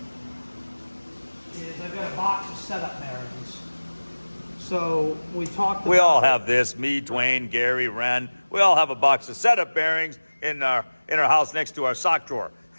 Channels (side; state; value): both; inverted; correlation -1.00